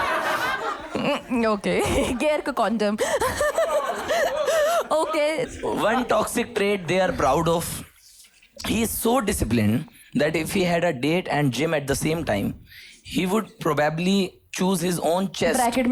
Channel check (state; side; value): identical; both; correlation 1.00